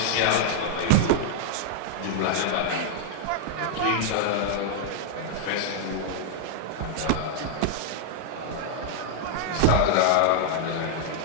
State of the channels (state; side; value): different; both; correlation -0.01